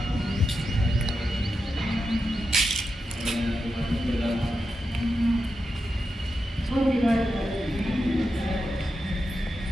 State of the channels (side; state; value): both; normal; correlation 0.88